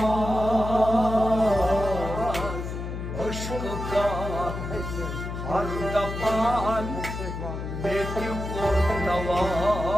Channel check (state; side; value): noise; left; hum, 6 dB below the sound